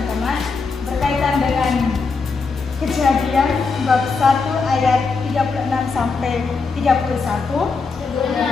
berkaitan dengan Kejadian bab 1 ayat 36 sampai 31.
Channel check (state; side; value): quieter; right; 4.6 dB